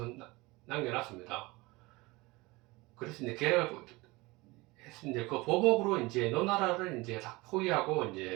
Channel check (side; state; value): left; quieter; 22.8 dB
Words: 남겨놨습니다. 그래서 이제 계획을 이제 그 보복으로 이제 노나라를 이제 다 포위하고